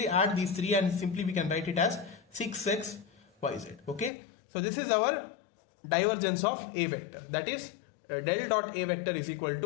add these three and simply we can write it as 6xyz. Okay, so this is our divergence of a vector, that is del dot a vector is equal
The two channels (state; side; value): drops out; right; at 4.1 s